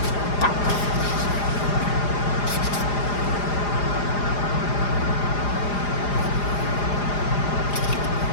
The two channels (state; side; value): late; right; 4.9 ms